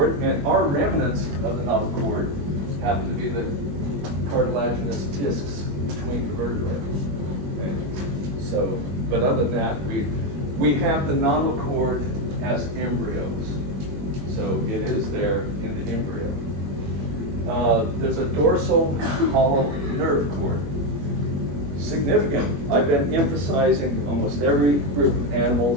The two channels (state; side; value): late; left; 21 ms